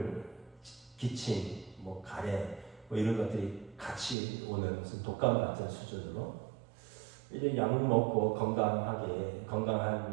기침, 뭐 가래, 뭐 이런 것들이 같이 오는 무슨 독감 같은 수준으로 이제 약 먹고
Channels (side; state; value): left; drops out; at 4.2 s